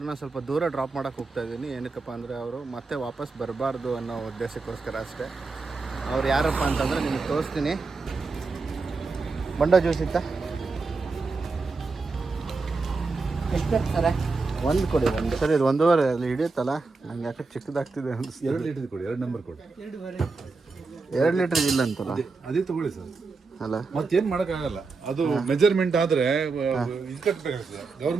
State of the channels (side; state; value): left; quieter; 4.1 dB